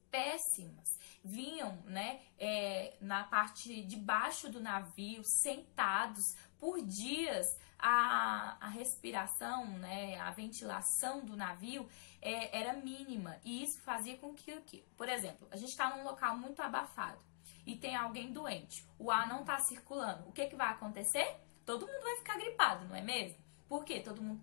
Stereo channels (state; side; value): silent; right; digital silence